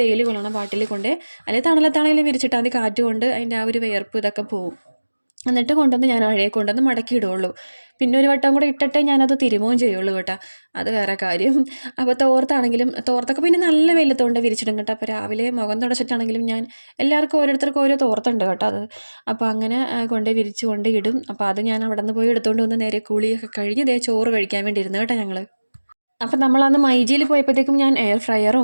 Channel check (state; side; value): inverted; both; correlation -1.00